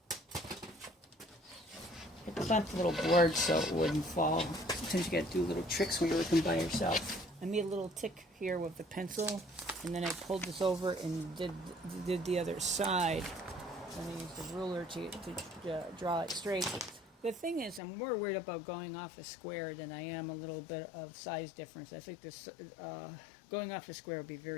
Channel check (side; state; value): right; drops out; at 17.8 s